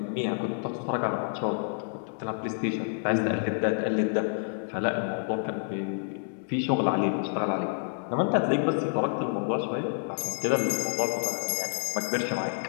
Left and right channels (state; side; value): silent; right; digital silence